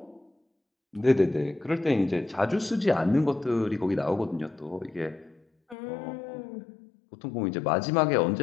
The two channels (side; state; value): right; drops out; at 5.8 s